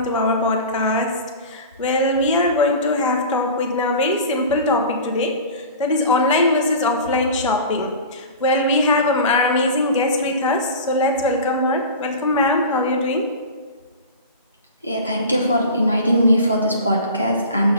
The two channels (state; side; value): inverted; both; correlation -0.34